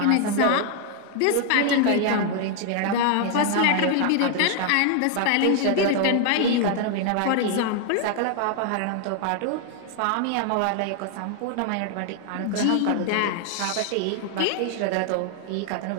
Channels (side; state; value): both; different; correlation 0.00